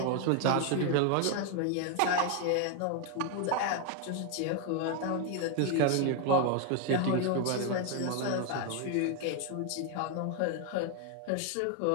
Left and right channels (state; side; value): different; both; correlation 0.01